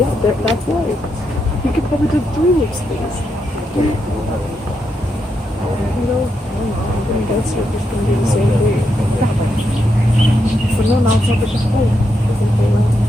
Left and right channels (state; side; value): normal; both; correlation 0.82